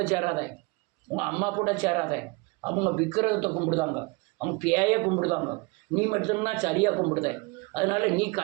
சேராத, உங்க அம்மா கூட சேராத. அவங்க விக்கிரகத்தை கும்பிடுதாங்க, அவங்க பேயை கும்பிடுதாங்க. நீ மட்டும்தான் சரியா கும்பிடுத. அதனால நீ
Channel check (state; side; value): quieter; left; 26.9 dB